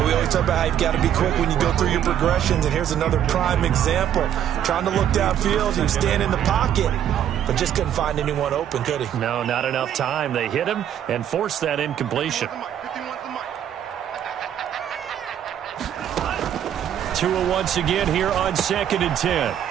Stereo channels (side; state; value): left; quieter; 10.1 dB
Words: we always talk about how you've got to be quick when you go through your progressions, and here's another prime example. Trying to look downfield, he was standing in the pocket, but just couldn't find anyone open, could he? No, not enough time. They hit him and forced that incompletion. Tua once again here on 2nd and 10.